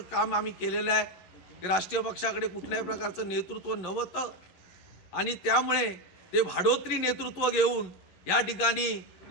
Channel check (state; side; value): late; right; 11 ms